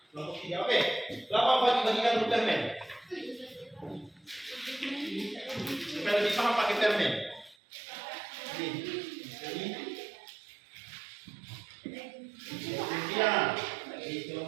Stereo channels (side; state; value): left; drops out; at 7.6 s